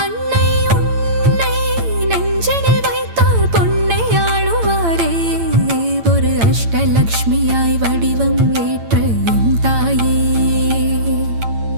அன்னை உன்னை நெஞ்சினில் வைத்தார் பொன்னை ஆளுவாரே ஒரு அஷ்டலக்ஷ்மியாய் வடிவம் ஏற்ற என் தாயே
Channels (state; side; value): late; left; 8.8 ms